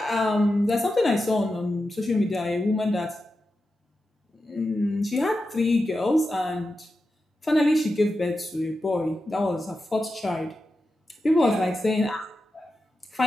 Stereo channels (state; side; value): normal; both; correlation 0.90